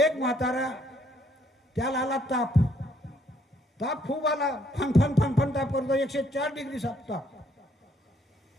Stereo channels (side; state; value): both; normal; correlation 0.68